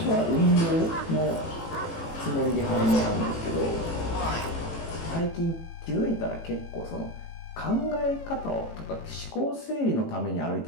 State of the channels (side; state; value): right; late; 18 ms